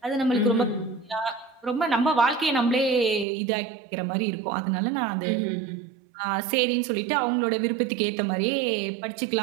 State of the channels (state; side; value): drops out; left; at 3.2 s